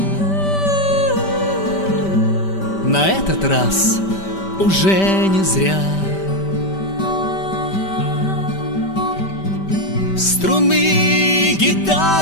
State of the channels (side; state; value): right; late; 5.1 ms